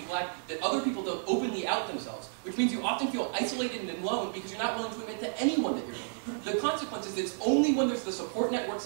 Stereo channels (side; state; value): left; silent; digital silence